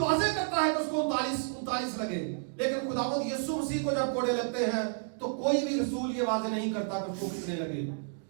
करता है कि उसको 39 लगे, लेकिन खुदावंद यीशु मसीह को जब कोड़े लगते हैं तो कोई भी रसूल ये वाज़ेह नहीं करता कि उसको कितने लगे।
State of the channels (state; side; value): silent; left; digital silence